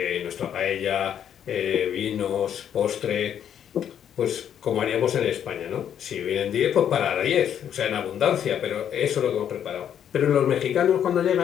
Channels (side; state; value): right; quieter; 9.3 dB